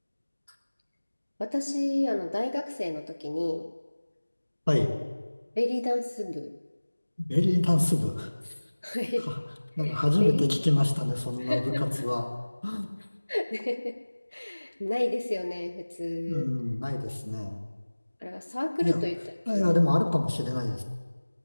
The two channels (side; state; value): both; inverted; correlation -1.00